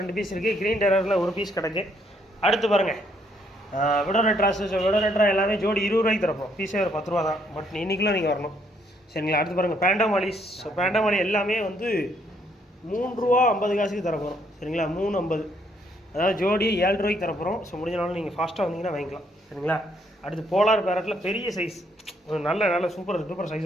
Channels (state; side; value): normal; both; correlation 0.70